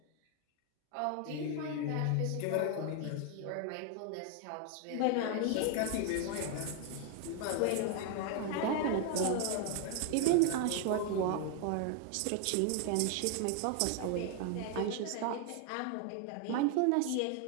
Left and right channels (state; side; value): different; both; correlation 0.01